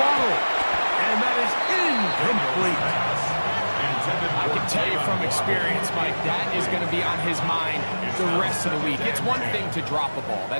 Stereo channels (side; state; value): both; inverted; correlation -1.00